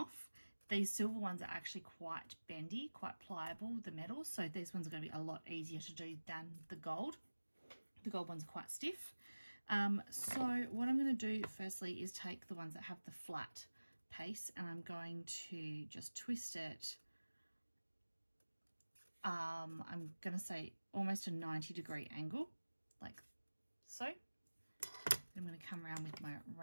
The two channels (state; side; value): inverted; both; correlation -1.00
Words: These silver ones are actually quite bendy, quite pliable, the metal, so these ones are going to be a lot easier to do than the gold. The gold ones are quite stiff. So what I'm going to do firstly is take the ones that have the flat piece, and I'm going to just twist it. I'm going to say almost a 90-degree angle, like so. I'm going to come around with my